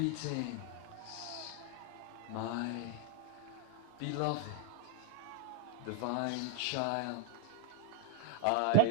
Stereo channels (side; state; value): both; different; correlation 0.01